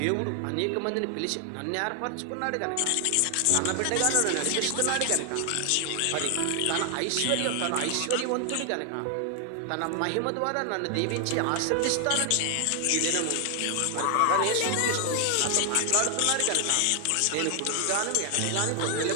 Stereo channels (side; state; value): both; different; correlation 0.00